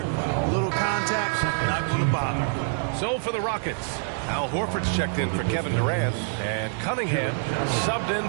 Little contact. Not going to bother. So for the Rockets, Al Horford's checked in for Kevin Durant. And Cunningham subbed in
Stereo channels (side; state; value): left; silent; 61 dB below the other